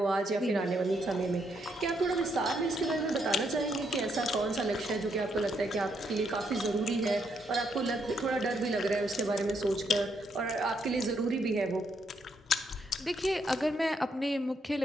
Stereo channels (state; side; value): normal; both; correlation 0.76